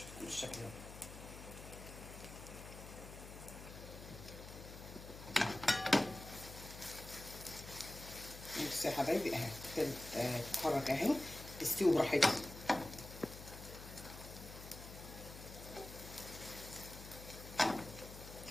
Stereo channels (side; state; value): left; noise; hum, 13 dB below the sound